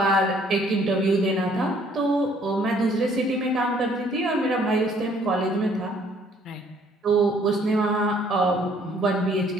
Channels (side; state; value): both; normal; correlation 0.62